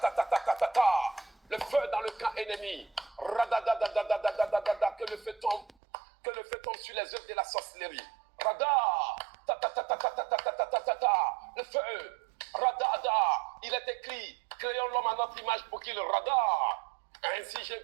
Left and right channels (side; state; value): left; drops out; at 5.7 s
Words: le feu dans le camp ennemi. Radadadadadadadadada, que le feu tombe sur les œuvres de la sorcellerie. Rada, tatatatatatatatata, le feu. Radada, il est écrit, créons l'homme à notre image pour qu'il rada. Ainsi je